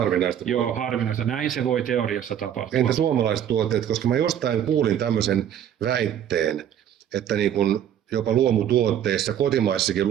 Joo, harvinaista. Näin se voi teoriassa tapahtua. Entä suomalaiset tuotteet, koska mä jostain kuulin tämmöisen väitteen, että niin kun jopa luomutuotteissa, kotimaissakin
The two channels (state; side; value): quieter; left; 10.0 dB